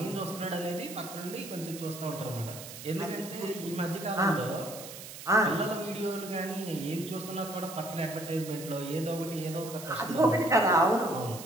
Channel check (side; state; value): right; noise; hiss, 12 dB below the sound